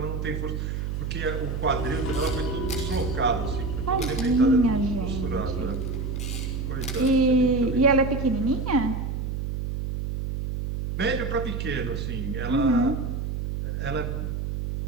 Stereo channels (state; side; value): noise; right; hum, 3 dB below the sound